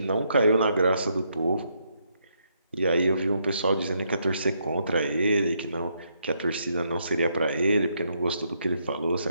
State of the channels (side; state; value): both; inverted; correlation -0.76